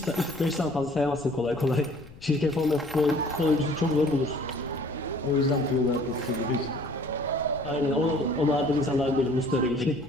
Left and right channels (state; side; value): noise; left; rumble, 20 dB below the sound